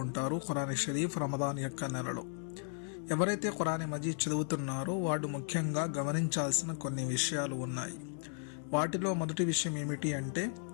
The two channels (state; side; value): silent; right; digital silence